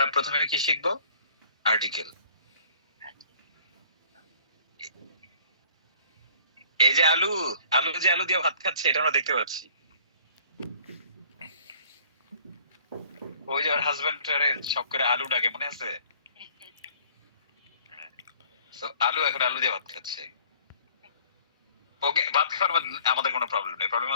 প্রথমে কি শিখবো? আর্টিকেল। এই যে আলু, আলু যে আলু দিয়ে ভাত খাচ্ছে, এটা আমরা দেখতে পাচ্ছি। ওই যে ওর হাজবেন্ড সব করে আলু ডাকে, মনে আছে? তো আলু এখন আলু দিয়ে ভাত খাচ্ছে। ওকে, ভাত খাওয়ার আমাদের কোনো প্রবলেম নেই। প্রবলেম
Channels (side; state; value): both; inverted; correlation -0.54